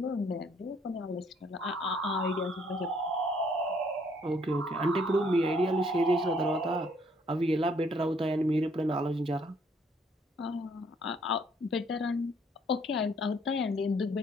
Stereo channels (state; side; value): normal; both; correlation 0.65